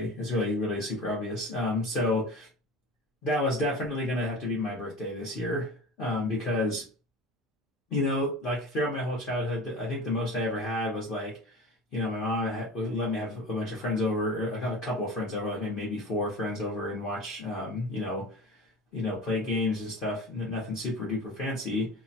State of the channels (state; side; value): normal; both; correlation 0.35